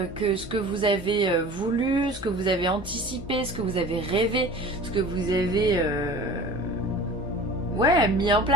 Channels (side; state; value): both; normal; correlation 0.41